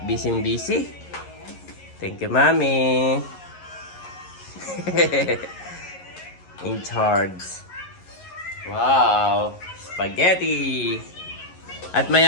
busy. Thank you, Mami. In charge. Wow. spaghetti. At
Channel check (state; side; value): late; right; 11 ms